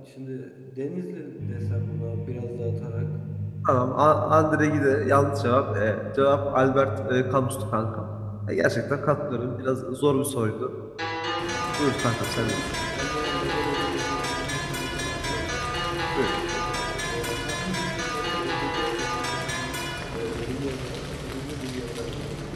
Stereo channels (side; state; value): both; identical; correlation 1.00